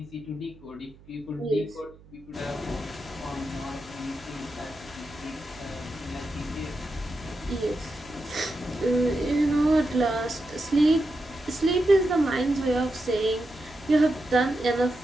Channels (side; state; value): right; noise; hum, 24 dB below the sound